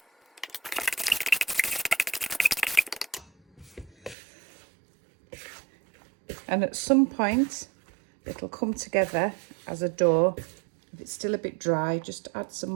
And at some point, it'll come together as a dough. If it's still a bit dry, just add some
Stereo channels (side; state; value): left; drops out; at 4.2 s